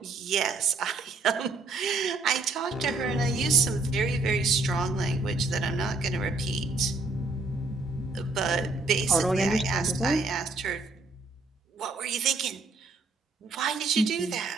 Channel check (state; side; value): quieter; left; 3.5 dB